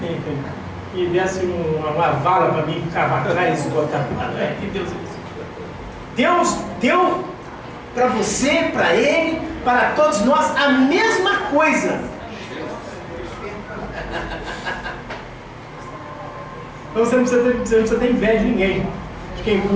e desse uma vala para mim cavacar e esgotar. Que Deus é isso? Deus deu para você, para ele, para todos nós a mesma coisa. Então você não precisa ter inveja de ninguém. De quem tem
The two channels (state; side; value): identical; both; correlation 1.00